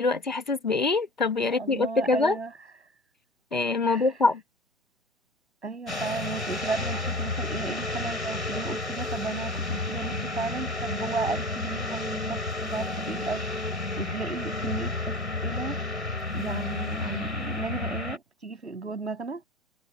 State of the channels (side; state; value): both; normal; correlation 0.37